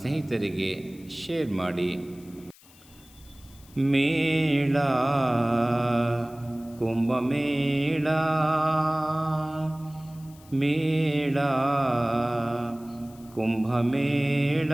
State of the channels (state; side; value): noise; left; hiss, 25 dB below the sound